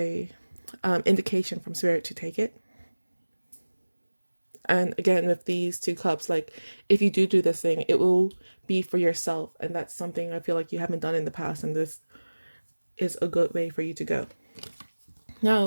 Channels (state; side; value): inverted; both; correlation -1.00